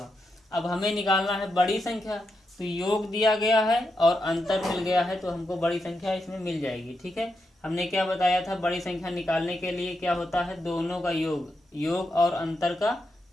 अब हमें निकालना है बड़ी संख्या, तो योग दिया गया है और अंतर मिल गया है, तो हमको बड़ी संख्या इसमें मिल जाएगी। ठीक है, हमने क्या बताया था, बड़ी संख्या निकालने के लिए क्या होता है, दोनों का योग, योग और अंतर का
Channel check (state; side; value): normal; both; correlation 0.85